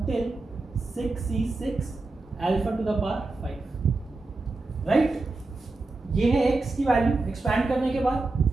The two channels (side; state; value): left; quieter; 3.3 dB